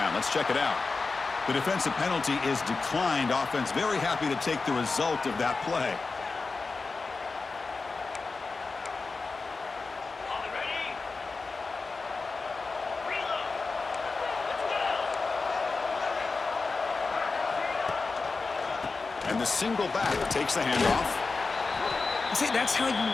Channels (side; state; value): right; quieter; 4.1 dB